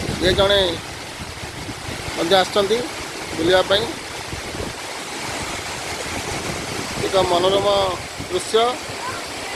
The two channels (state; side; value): identical; both; correlation 1.00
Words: ये जड़े आसछंती बुलिया एक मनोरम दृश्य।